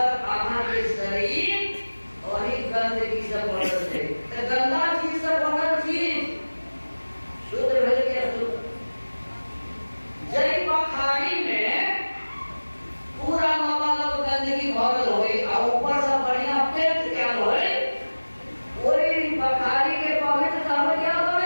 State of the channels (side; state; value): both; inverted; correlation -1.00